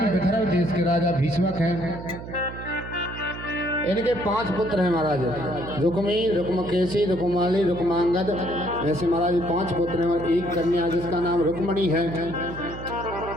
विदर्भ देश के राजा भीष्मक हैं। इनके 5 पुत्र हैं महाराज, रुक्मी, रुक्मकेशी, रुक्माली, रुक्मांगद। ऐसे महाराज 5 पुत्र हैं और एक कन्या जिसका नाम रुक्मणी है।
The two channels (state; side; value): noise; right; hum, 11 dB below the sound